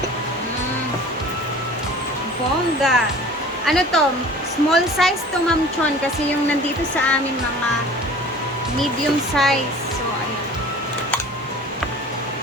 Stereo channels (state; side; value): normal; both; correlation 0.44